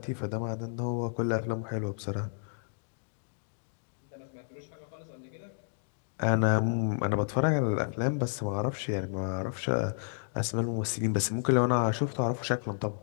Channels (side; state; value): right; silent; digital silence